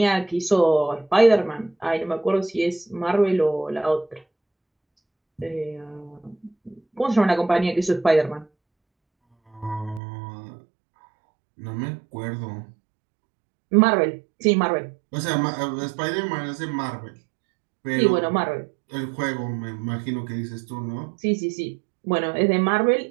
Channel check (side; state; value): left; drops out; at 10.0 s